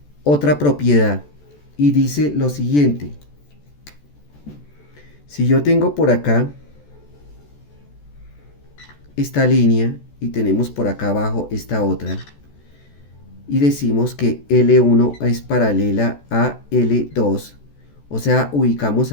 otra propiedad. Y dice lo siguiente. Si yo tengo por acá esta línea y tenemos por acá abajo esta otra, y decimos que L1 es paralela a L2, o sea, ubicamos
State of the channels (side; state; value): right; late; 14 ms